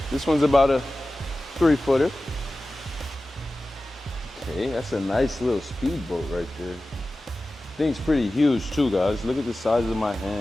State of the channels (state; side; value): normal; both; correlation 0.95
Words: this one's about a 3-footer. Okay, that's a nice little speedboat right there. Thing's pretty huge too, guys. Look at the size of my